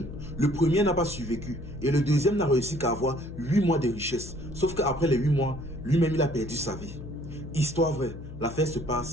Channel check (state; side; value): noise; left; hum, 12 dB below the sound